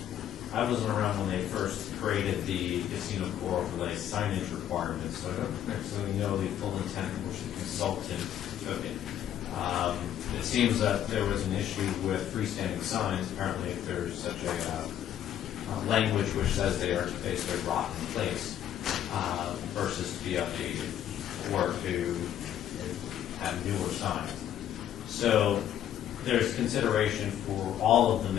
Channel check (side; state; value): right; quieter; 10.7 dB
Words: I wasn't around when they first created the casino core overlay signage requirements, so I don't necessarily know the full intent of which the consultant took it. It seems that there was an issue with freestanding signs. Apparently, if there's such a language which says they are basically rotten in place versus to be updated or to have newer signs. So there's consideration for all of the